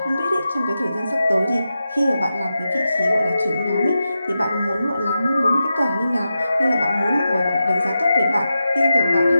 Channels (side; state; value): both; inverted; correlation -0.90